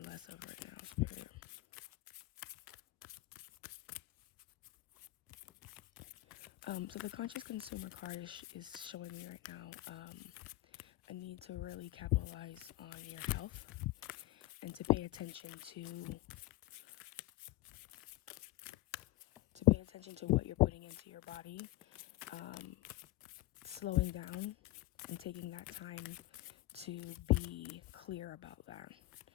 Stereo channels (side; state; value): right; quieter; 17.8 dB